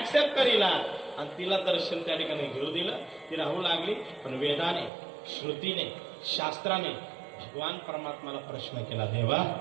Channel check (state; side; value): drops out; left; at 4.9 s